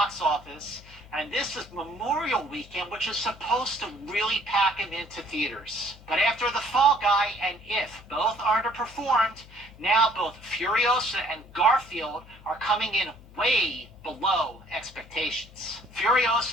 office. And this is Memorial Weekend, which is supposed to really pack them into theaters. But after The Fall Guy and If both underperformed, now both Furiosa and Garfield are coming in way below expectations.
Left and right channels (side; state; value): left; noise; hum, 22 dB below the sound